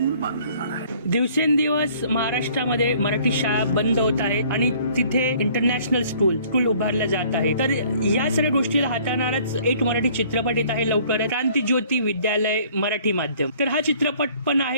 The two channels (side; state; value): both; inverted; correlation -0.56